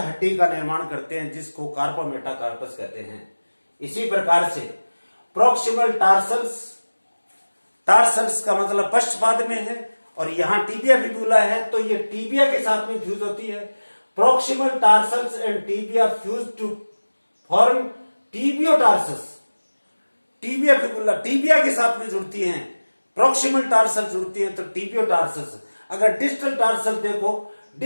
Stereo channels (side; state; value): both; inverted; correlation -1.00